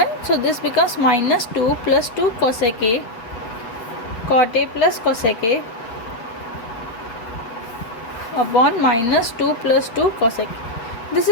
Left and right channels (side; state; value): right; late; 8.6 ms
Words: so this becomes minus 2 plus 2 cosec a, cot a plus cosec a upon minus 2 plus 2 cosec a. This